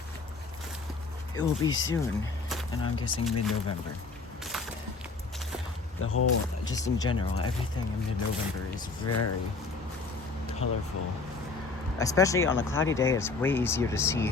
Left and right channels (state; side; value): quieter; right; 4.1 dB